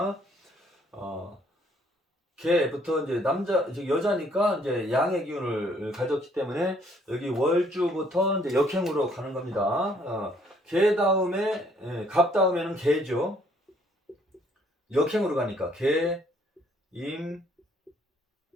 개부터 이제 여자니까 이제 양의 기운을 가졌기 때문에 여기 월주부터 이제 역행으로 가는 겁니다. 개 다음에 갑 다음에는 개죠. 역행으로 가니까 개, 임,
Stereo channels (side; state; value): both; normal; correlation 0.64